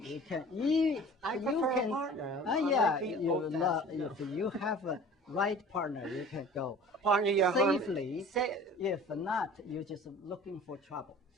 can. I prefer a partner. If you have a right partner, you can go partner safely. If not, you're just looking for trouble.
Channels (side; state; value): both; normal; correlation 0.44